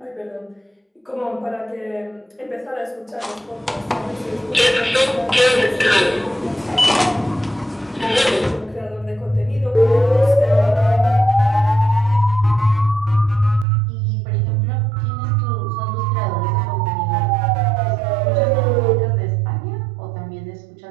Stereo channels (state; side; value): drops out; left; at 13.7 s